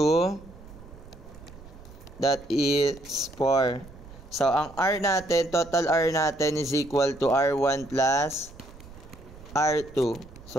that is 4. So, ang R natin, total R natin is equal to R1 plus R2.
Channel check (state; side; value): noise; right; rumble, 19 dB below the sound